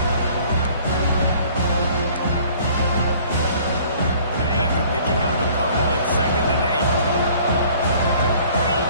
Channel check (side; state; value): both; inverted; correlation -0.54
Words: After picking up a couple at 2nd and 8.